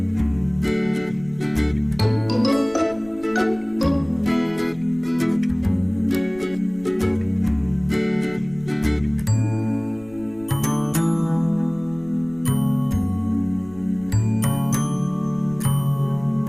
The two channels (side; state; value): left; noise; rumble, 23 dB below the sound